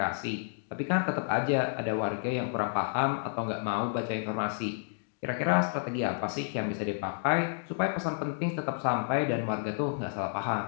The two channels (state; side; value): silent; right; digital silence